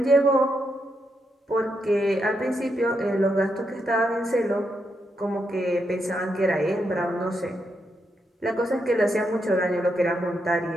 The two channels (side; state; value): both; normal; correlation 0.81